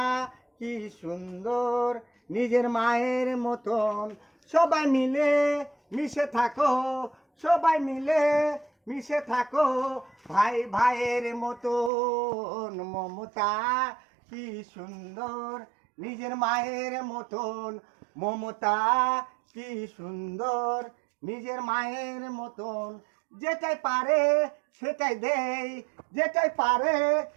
কি সুন্দর, নিজের মায়ের মতন। সবাই মিলে মিশে থাকো, সবাই মিলে মিশে থাকো ভাই ভাইয়ের মতন। মমতা কি সুন্দর, নিজের মায়ের মতন। মমতা কি সুন্দর, নিজের মায়ের মতন। যেটাই পারে সেটাই দেই, যেটাই পারে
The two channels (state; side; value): drops out; left; at 11.9 s